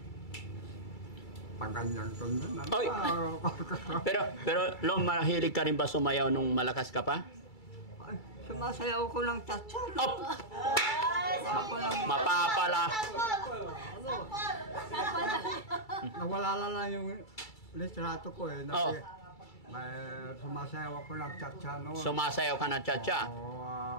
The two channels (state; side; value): late; right; 2.3 ms